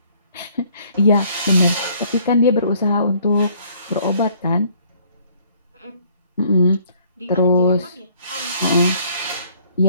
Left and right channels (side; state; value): both; inverted; correlation -0.61